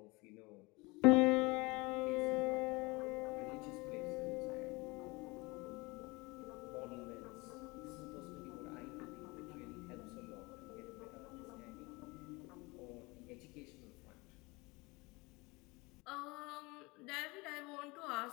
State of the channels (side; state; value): right; quieter; 24.9 dB